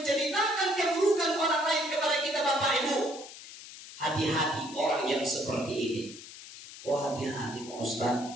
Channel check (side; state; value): left; noise; hiss, 15 dB below the sound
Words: keburukan orang lain kepada kita Bapak Ibu, hati-hati orang yang seperti ini. Oh hati-hati Pak Ustaz.